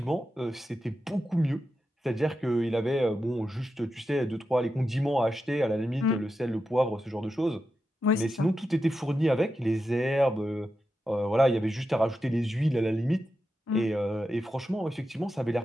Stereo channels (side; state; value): both; normal; correlation 0.89